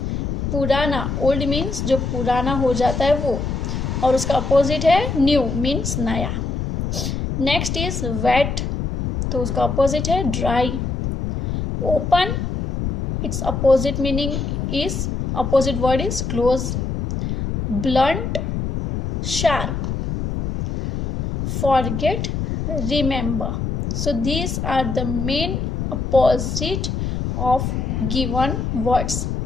पुराना, old means जो पुराना हो जाता है वो, और उसका opposite है न्यू मीन्स नया. नेक्स्ट इज वेट, तो उसका अपोजिट है dry. Open, its opposite meaning is, opposite word is close. Blunt, sharp. Forget, remember. So these are the main opposite of given words.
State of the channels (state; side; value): noise; left; rumble, 2 dB below the sound